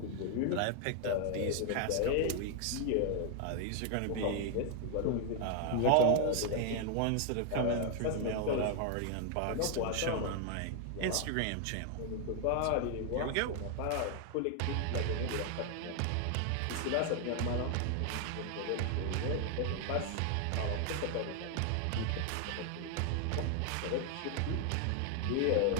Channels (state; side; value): different; both; correlation 0.00